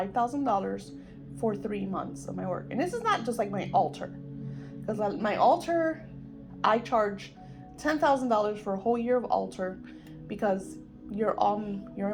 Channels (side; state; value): both; identical; correlation 1.00